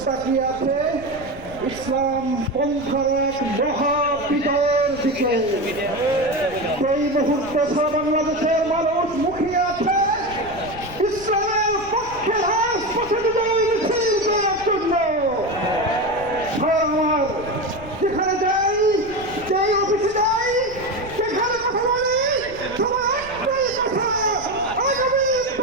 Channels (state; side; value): noise; left; rumble, 17 dB below the sound